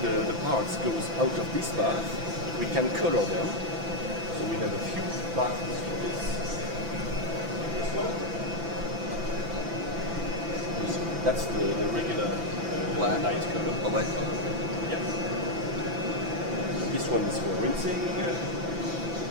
parts goes out of this bath, we can color them. So we have a few baths for this. This one. That's the regular black light color. Yeah. This one is for rinsing.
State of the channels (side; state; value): left; late; 5.9 ms